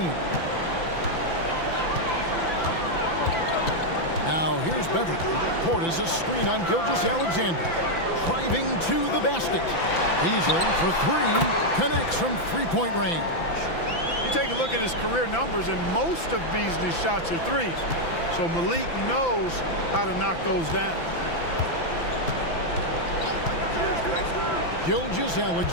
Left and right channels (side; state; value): right; late; 5.9 ms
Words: Now here's Beverly. Portis a screen on Gilgeous-Alexander. Driving to the basket. Beasley for three. Connects from three-point range. You take a look at his career numbers, and most of Beasley's shots are threes. So Malik knows how to knock those down.